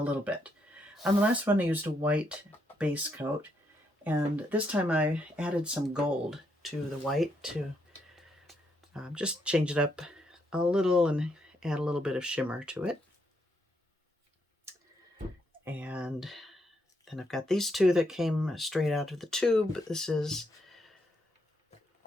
little bit. On the last one I used a white base coat, and this time I added some gold to the white to just change it up a little and add a little bit of shimmer to it. And then I've got these two that came straight out of the tube. This is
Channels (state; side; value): normal; both; correlation 0.77